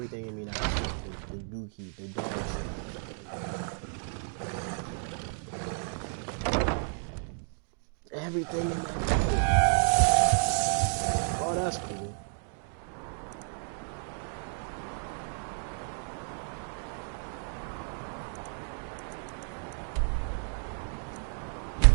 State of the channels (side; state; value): left; silent; 57 dB below the other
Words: in me now. The dookie, the dog shit. Everything in my body. Oh, that's cool.